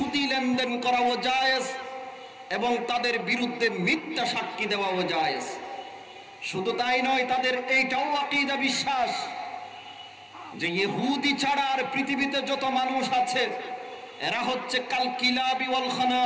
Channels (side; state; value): both; identical; correlation 1.00